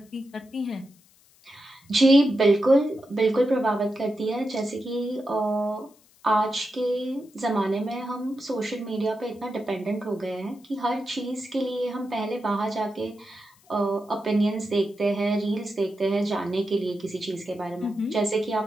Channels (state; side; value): noise; left; hiss, 30 dB below the sound